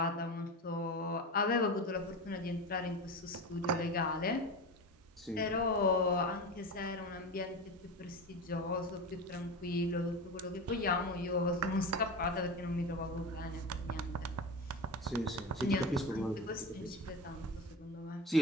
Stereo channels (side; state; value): both; normal; correlation 0.25